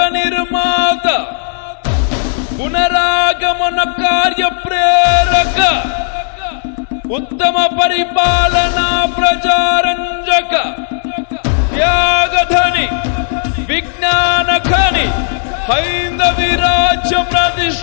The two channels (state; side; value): silent; right; digital silence